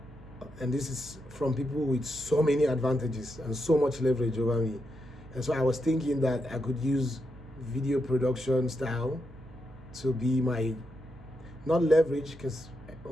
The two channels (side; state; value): right; noise; hum, 20 dB below the sound